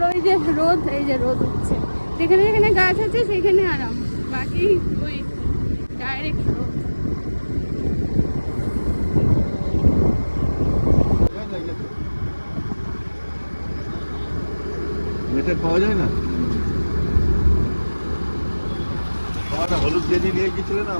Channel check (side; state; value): both; inverted; correlation -1.00